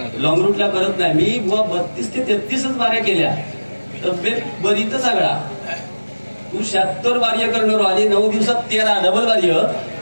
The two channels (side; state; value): both; inverted; correlation -1.00